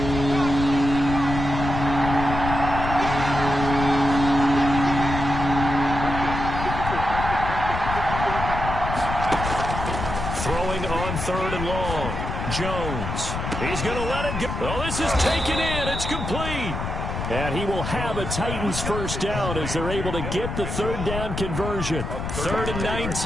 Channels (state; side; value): noise; left; rumble, 4 dB below the sound